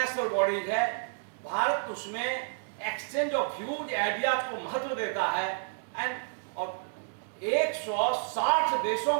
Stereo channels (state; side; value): silent; left; digital silence